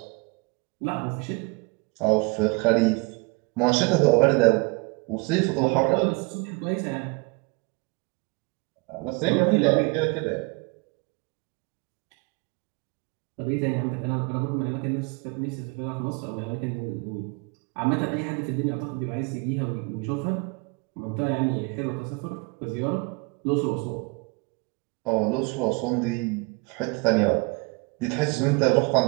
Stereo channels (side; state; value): left; quieter; 29.5 dB